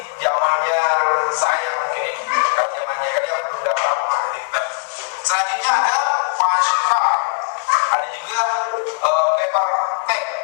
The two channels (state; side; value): quieter; right; 38.7 dB